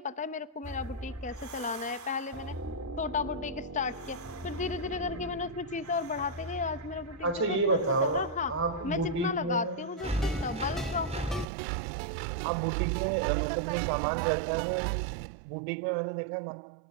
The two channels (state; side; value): drops out; left; at 11.5 s